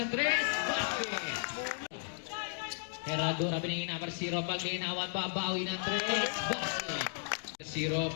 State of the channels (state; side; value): silent; right; digital silence